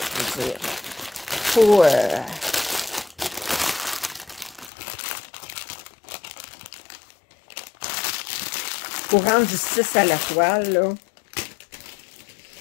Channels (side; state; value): right; drops out; at 4.7 s